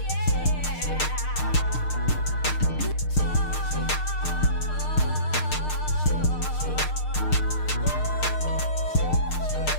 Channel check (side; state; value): right; late; 6.6 ms